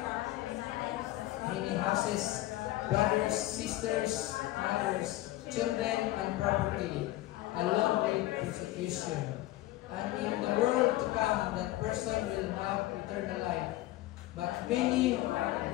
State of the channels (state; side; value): quieter; right; 16.4 dB